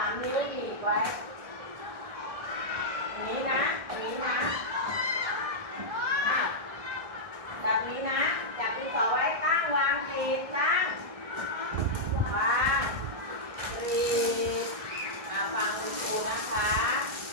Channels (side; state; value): left; late; 1.6 ms